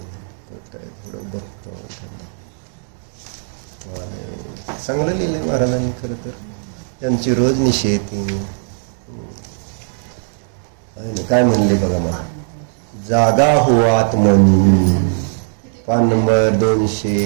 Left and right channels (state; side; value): silent; left; digital silence